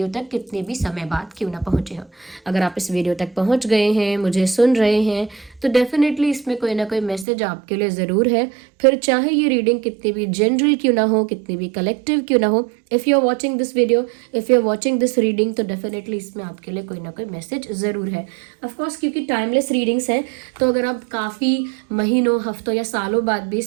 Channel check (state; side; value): drops out; left; at 7.2 s